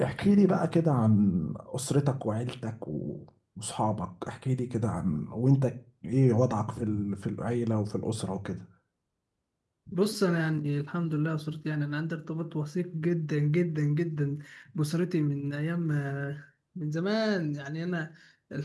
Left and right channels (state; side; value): identical; both; correlation 1.00